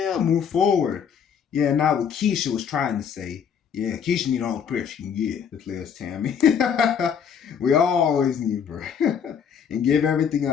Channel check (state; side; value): quieter; right; 7.4 dB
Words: Move forward. Yeah, not what Keisha was trying to say. Yeah, Keisha need all the prayer she can get, declares Tammy. We always need prayer. And give everything